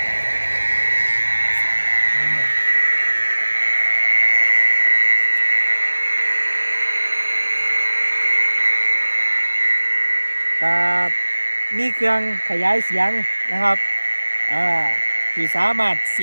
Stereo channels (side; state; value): both; inverted; correlation -1.00